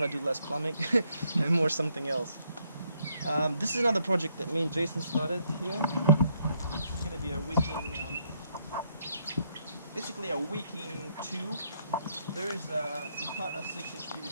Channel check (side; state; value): both; inverted; correlation -0.72